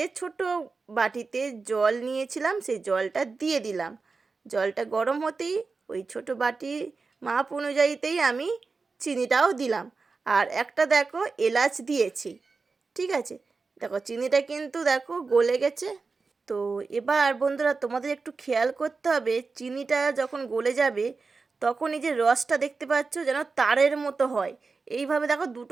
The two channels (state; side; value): quieter; left; 4.3 dB